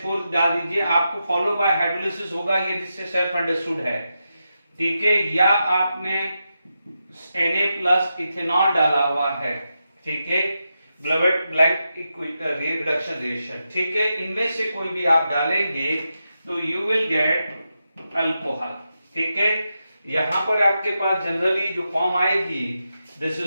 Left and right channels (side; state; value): both; inverted; correlation -0.88